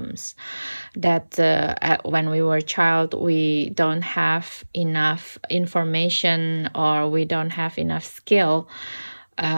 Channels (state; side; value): inverted; both; correlation -1.00